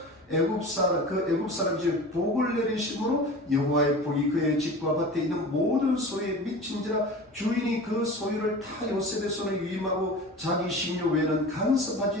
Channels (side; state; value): both; normal; correlation 0.36